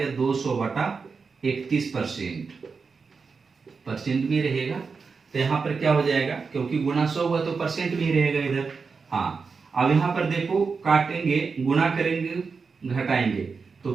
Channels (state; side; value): quieter; left; 5.0 dB